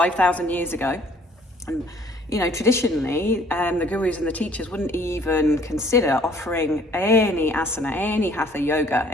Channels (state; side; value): normal; both; correlation 0.58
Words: years ago. And, traditionally, the gurus and the teachers wouldn't even consider offering any asana, any hatha yoga,